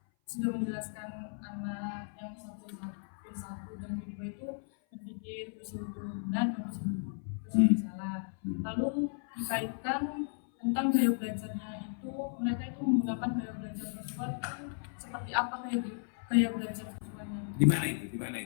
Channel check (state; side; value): silent; right; 55 dB below the other